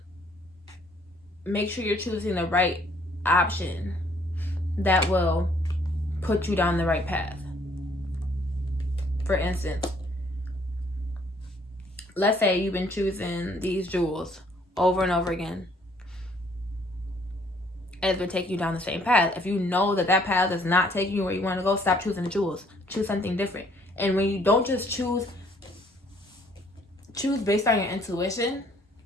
make sure you're choosing the right option that will put you down the right path. For instance, let's say you've been choosing these jewels over and over again, and it's been taking you down the same path. If you know that that path is not taking you where you want to go, stop choosing the jewels. Choose something different. And when you don't just choose based on your intuition,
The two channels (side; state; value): both; normal; correlation 0.63